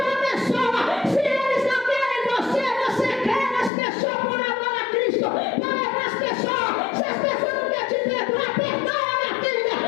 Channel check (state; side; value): drops out; right; at 3.7 s